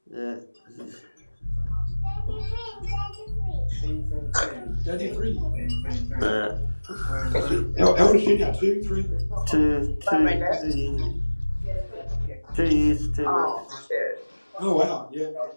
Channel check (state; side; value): inverted; both; correlation -1.00